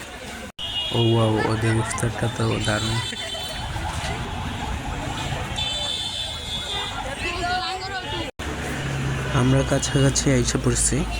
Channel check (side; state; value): both; identical; correlation 1.00